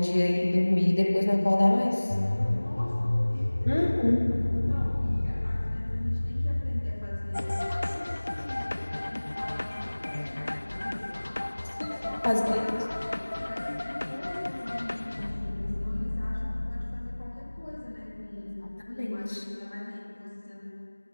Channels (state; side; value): inverted; both; correlation -1.00